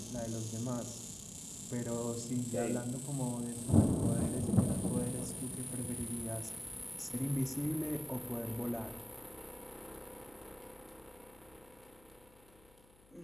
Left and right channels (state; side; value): noise; left; hum, 27 dB below the sound